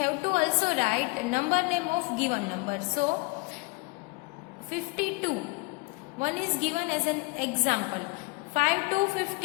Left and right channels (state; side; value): quieter; right; 27.9 dB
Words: to also write number name of given number. So 52. 1 is given as an example. 5 to